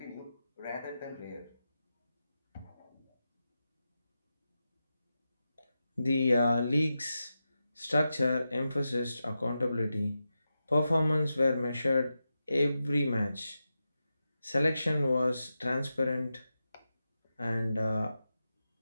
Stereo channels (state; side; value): inverted; both; correlation -0.90